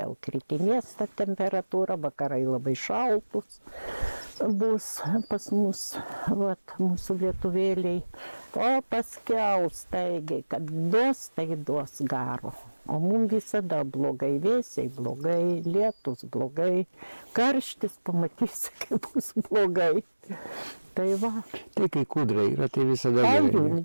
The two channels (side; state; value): both; inverted; correlation -1.00